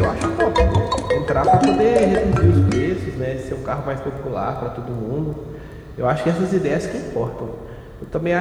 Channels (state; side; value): identical; both; correlation 1.00